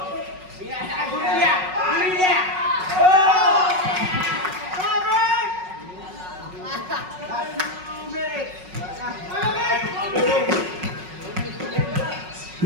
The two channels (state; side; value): late; left; 5.4 ms